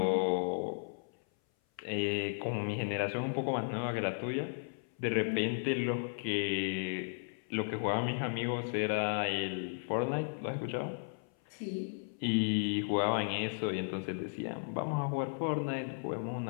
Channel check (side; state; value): right; silent; 54 dB below the other